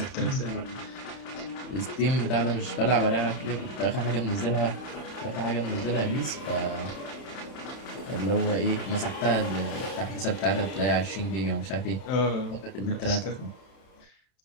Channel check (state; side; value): late; right; 31 ms